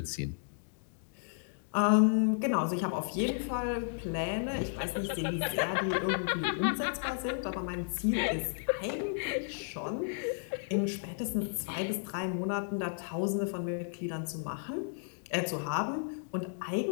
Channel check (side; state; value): right; silent; digital silence